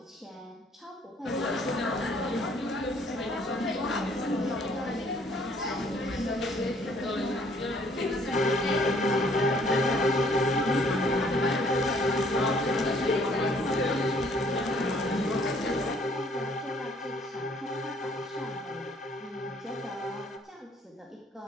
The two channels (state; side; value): normal; both; correlation 0.61